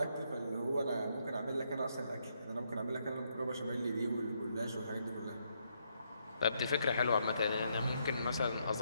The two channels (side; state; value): both; inverted; correlation -0.76